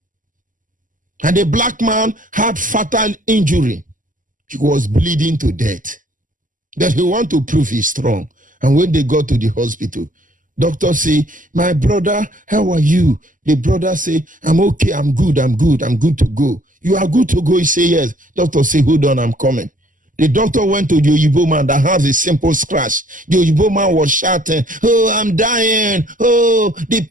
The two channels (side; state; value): left; late; 0.38 ms